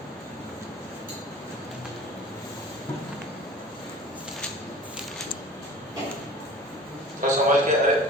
तो समझ के। अरे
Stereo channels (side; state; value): both; normal; correlation 0.43